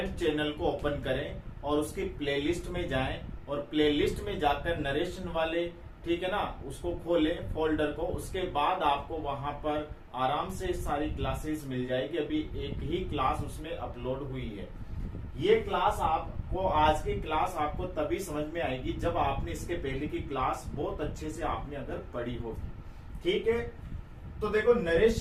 चैनल को ओपन करें और उसकी प्लेलिस्ट में जाएं और प्लेलिस्ट में जाकर नरेशन वाले, ठीक है ना, उसको खोलें फोल्डर को। उसके बाद आपको वहां पर आराम से सारी क्लासेस मिल जाएगी। अभी एक ही क्लास उसमें अपलोड हुई है। ये क्लास आपको, आज की क्लास आपको तभी समझ में आएगी जब आपने इसके पहले की क्लास बहुत अच्छे से आपने अगर पढ़ी होगी। ठीक है, तो देखो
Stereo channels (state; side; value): identical; both; correlation 1.00